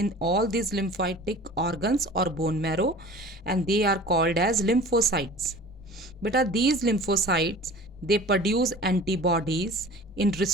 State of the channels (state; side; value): normal; both; correlation 0.42